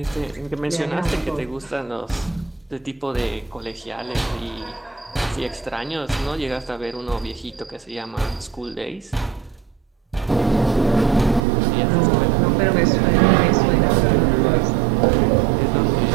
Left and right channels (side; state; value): left; drops out; at 11.4 s